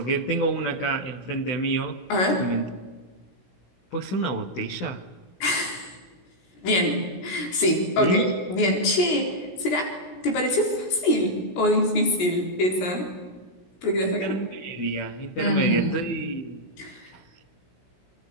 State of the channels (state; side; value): late; right; 17 ms